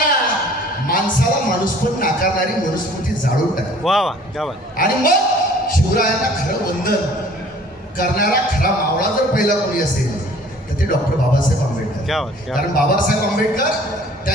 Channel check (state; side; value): normal; both; correlation 0.52